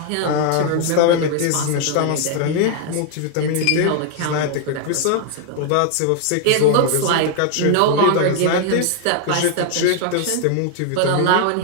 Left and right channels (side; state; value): both; different; correlation 0.00